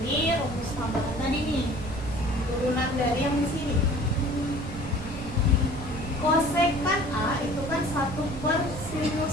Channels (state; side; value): noise; right; rumble, 9 dB below the sound